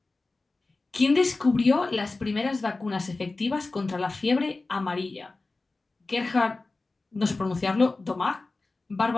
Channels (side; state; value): right; quieter; 3.4 dB